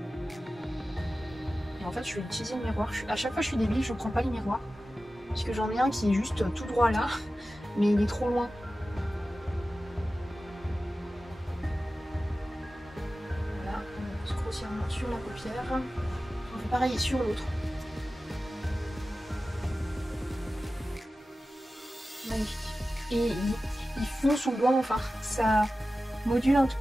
Et en fait, je vais utiliser le miroir. À chaque fois, je suis débile, je prends pas les miroirs. Parce que j'en ai un qui est juste tout droit là, mais il est trop loin. Voilà, on pose grossièrement sur la paupière. On fait pareil sur l'autre. Magnifique. Et il fond sous le doigt, enfin, ça module un tout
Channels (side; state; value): both; normal; correlation 0.95